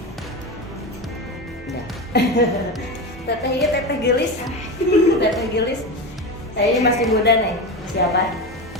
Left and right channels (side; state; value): both; normal; correlation 0.21